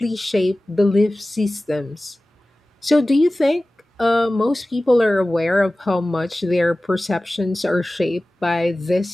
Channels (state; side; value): normal; both; correlation 0.97